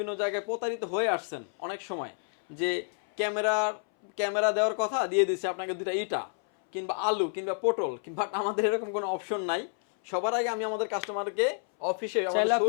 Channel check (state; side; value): silent; right; 58 dB below the other